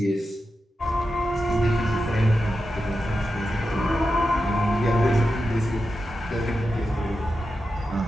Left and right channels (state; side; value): normal; both; correlation 0.90